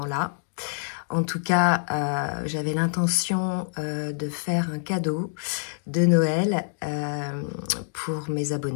En tout cas, j'avais l'intention de faire un cadeau de Noël pour mes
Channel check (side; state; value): right; silent; digital silence